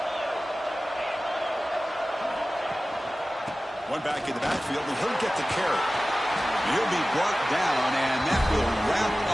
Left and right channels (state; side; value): normal; both; correlation 0.96